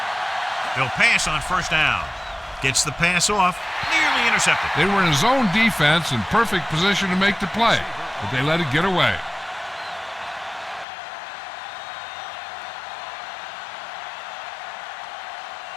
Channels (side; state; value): right; drops out; at 10.9 s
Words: They'll pass on first down. Gets the pass off, nearly intercepted. They were in zone defense in perfect position to make the play, but they let it get away.